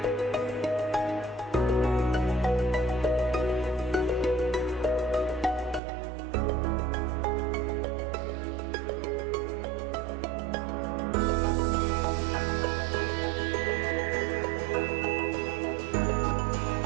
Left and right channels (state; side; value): drops out; left; at 5.8 s